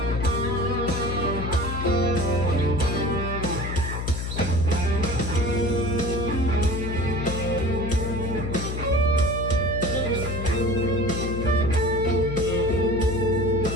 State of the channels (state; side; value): noise; left; hum, 4 dB below the sound